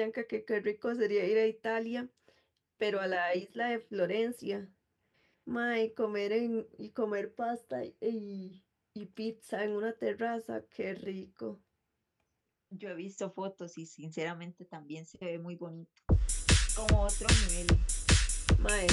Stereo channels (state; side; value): identical; both; correlation 1.00